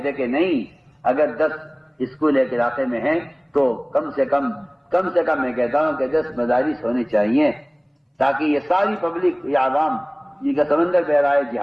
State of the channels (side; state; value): both; identical; correlation 1.00